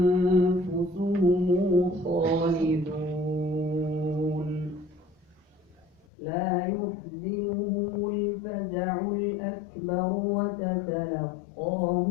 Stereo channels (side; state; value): right; drops out; at 6.0 s